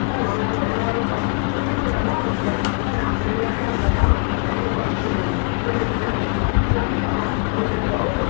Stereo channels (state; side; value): quieter; right; 36.5 dB